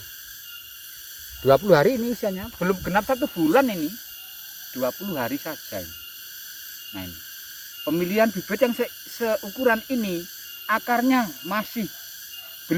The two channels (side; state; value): both; identical; correlation 1.00